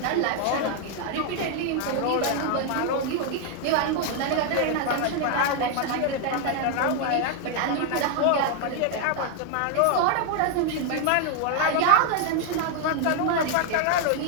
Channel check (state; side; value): different; both; correlation 0.00